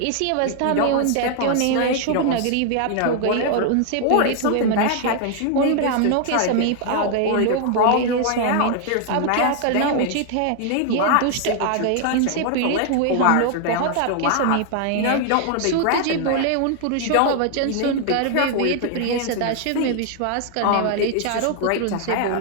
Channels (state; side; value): different; both; correlation 0.00